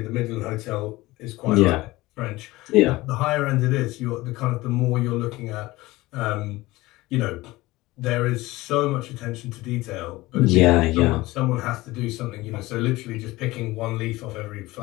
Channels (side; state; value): right; quieter; 19.4 dB